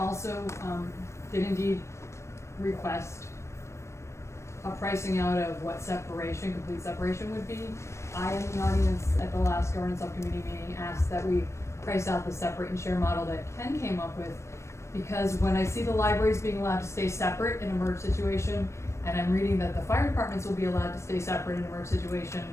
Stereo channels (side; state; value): right; late; 0.13 ms